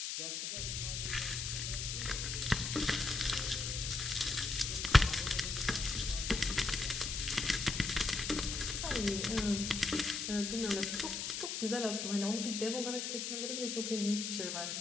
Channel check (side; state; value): left; noise; hiss, 3 dB below the sound